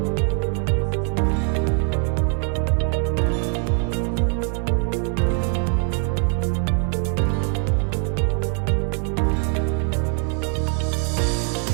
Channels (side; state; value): left; quieter; 32.8 dB